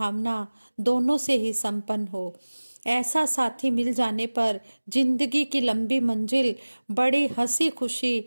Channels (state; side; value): inverted; both; correlation -1.00